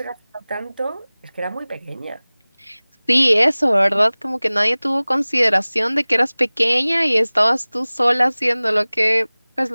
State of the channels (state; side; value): inverted; both; correlation -1.00